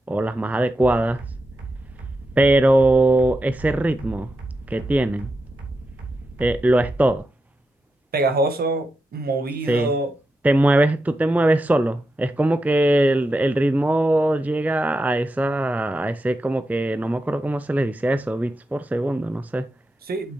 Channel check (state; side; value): normal; both; correlation 0.87